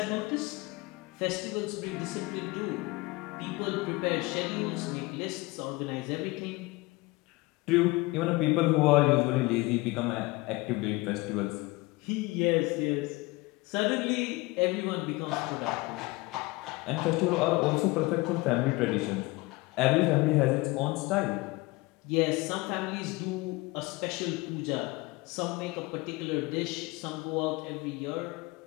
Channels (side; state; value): right; quieter; 22.6 dB